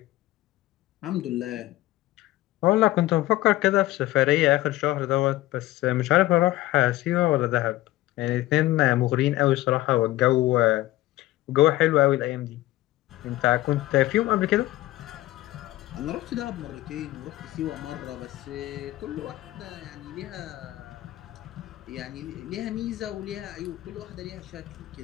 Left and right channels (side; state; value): right; quieter; 16.6 dB